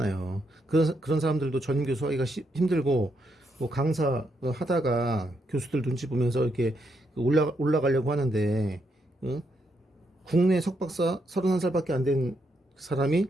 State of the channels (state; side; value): normal; both; correlation 0.79